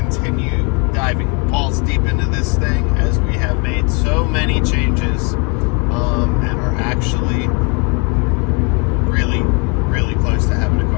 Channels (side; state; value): right; quieter; 33.6 dB